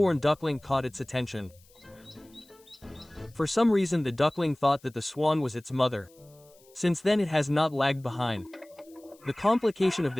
duckling caught its attention. For some reason the duckling thought that the swan was its mother. Since then it has not lagged behind. The complication of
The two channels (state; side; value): noise; left; hiss, 29 dB below the sound